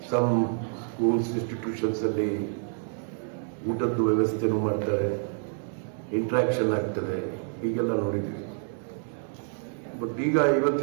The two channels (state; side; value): silent; left; 59 dB below the other